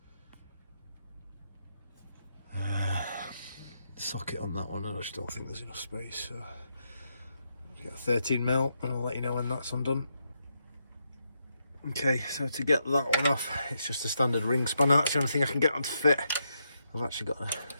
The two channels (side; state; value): both; inverted; correlation -0.81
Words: socket on that one. I just don't think there's enough space, so I'll get a 13 mil and I'll let you know when that's undone. Okay, so to get that one off, it's just a standard ring spanner. That's the only thing I can get on to fit. I've actually got